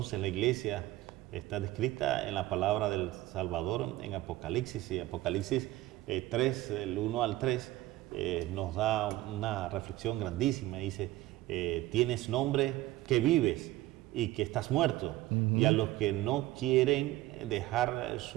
la iglesia está descrita en la palabra del Salvador en Apocalipsis. Y Apocalipsis 3, del 1 al 3, nos da una reflexión grandísima. Dice, tienes nombre que vives y que estás muerto. Y a los que no quieren dejar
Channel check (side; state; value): left; quieter; 16.5 dB